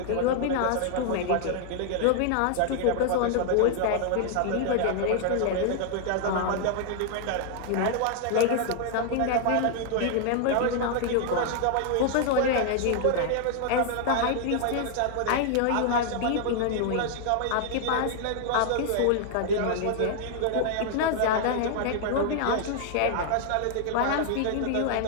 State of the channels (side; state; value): both; different; correlation -0.01